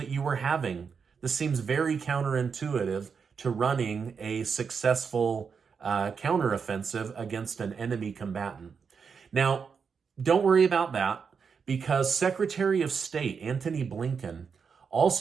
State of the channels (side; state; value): left; quieter; 6.0 dB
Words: you were having? This seems very counterintuitive to running a successful counteroffensive against an enemy combatant. Now, don't worry about that, because Secretary of State Anotony Blinken